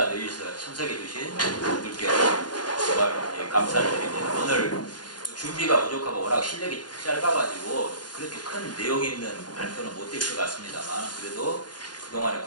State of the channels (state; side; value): late; right; 0.70 ms